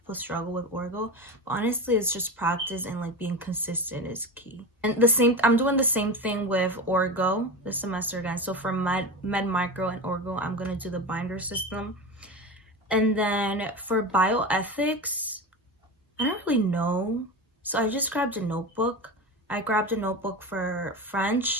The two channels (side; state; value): both; normal; correlation 0.24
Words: struggle with Orgo, but honestly it's just practice and being consistent is key. And I'm doing the same thing with Orgo this semester again. So for Med Micro and Orgo, I'm gonna do the binder system. And then for bioethics, I don't really know, so I just grabbed a notebook. I grabbed a notebook for